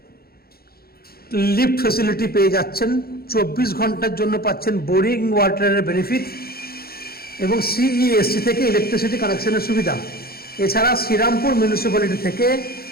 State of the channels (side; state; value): right; late; 0.44 ms